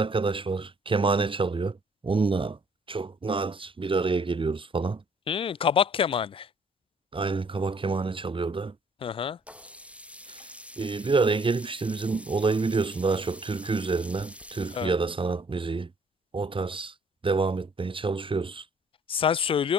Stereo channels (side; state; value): both; normal; correlation 0.60